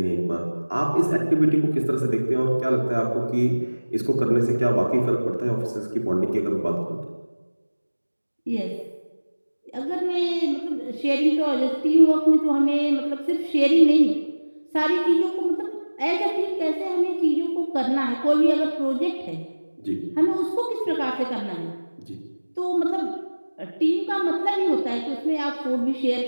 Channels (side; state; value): both; inverted; correlation -1.00